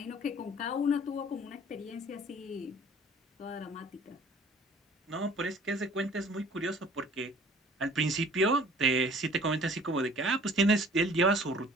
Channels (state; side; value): normal; both; correlation 0.51